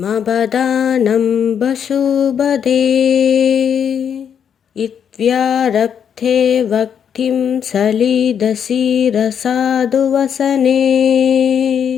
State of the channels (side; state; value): right; quieter; 8.0 dB